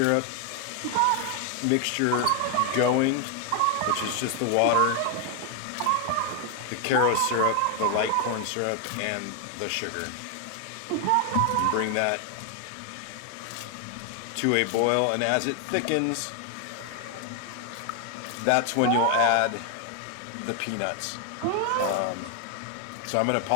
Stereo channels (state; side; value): different; both; correlation 0.00